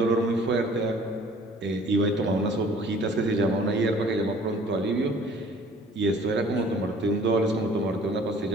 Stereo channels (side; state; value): both; normal; correlation 0.52